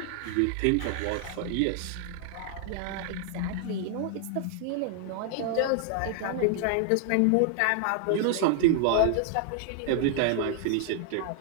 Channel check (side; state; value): both; different; correlation 0.00